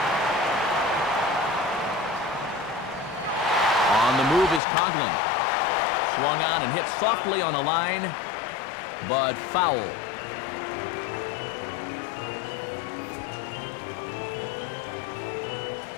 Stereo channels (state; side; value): drops out; right; at 4.6 s